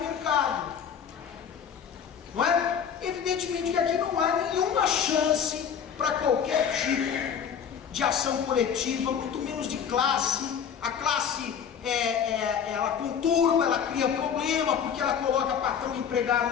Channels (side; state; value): right; quieter; 7.8 dB